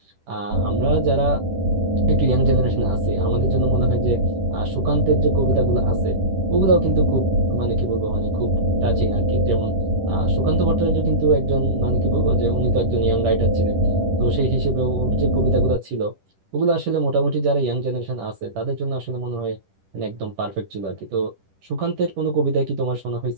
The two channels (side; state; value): left; late; 10 ms